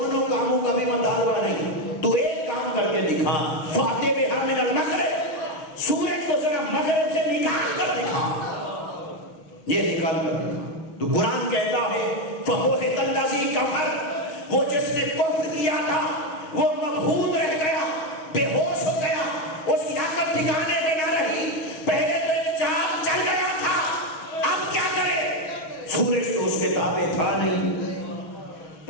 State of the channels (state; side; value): late; right; 6.3 ms